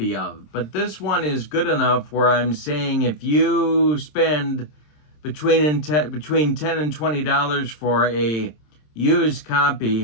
of. But this one is good enough where I'm saying if you spend between $10 and $20 for a used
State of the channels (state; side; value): late; right; 27 ms